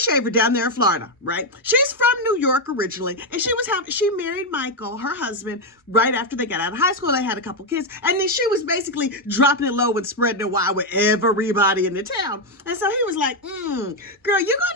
down there in Florida, right? She's from New York originally, and she married Michael, her husband, right after they got out of high school. They had a couple kids, and then she was basically dropping it low and spreading it wide with everybody in the town. And so he was like, girl, you're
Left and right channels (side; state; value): both; normal; correlation 0.04